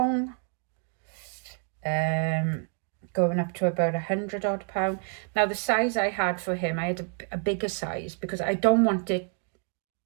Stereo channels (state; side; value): quieter; left; 39.9 dB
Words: Going up to about £100 odd. Now the size I had for him, I had a bigger size because I don't want it